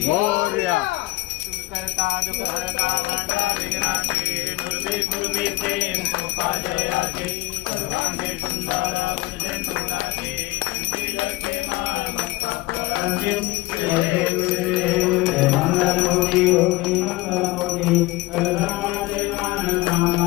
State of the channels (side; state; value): right; quieter; 19.5 dB